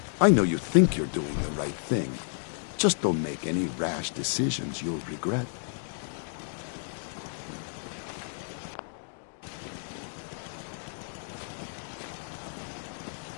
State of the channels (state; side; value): silent; right; digital silence